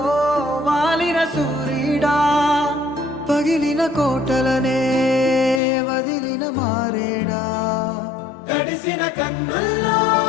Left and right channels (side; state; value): right; drops out; at 5.6 s